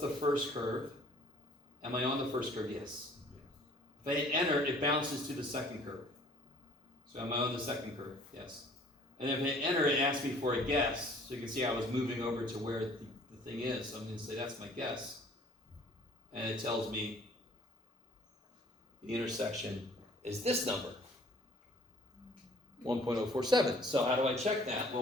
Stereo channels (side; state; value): both; normal; correlation 0.54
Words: first curve? Am I on the first curve? Yes. If I hit enter, it bounces to the second curve. So am I on the second curve? Yes. And if I hit enter, it asks me for a guess. So you can see I was moving over to where the thing is. So I'm going to say that's my guess. And it tells me the intersection is this number, 1.047. So how do I check that?